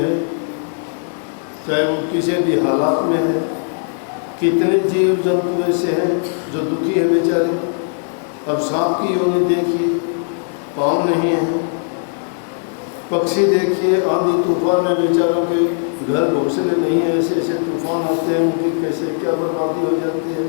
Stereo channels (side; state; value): right; silent; 65 dB below the other